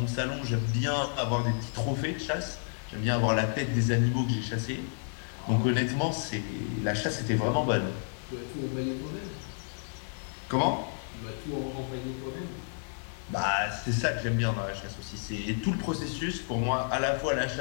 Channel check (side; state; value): right; silent; digital silence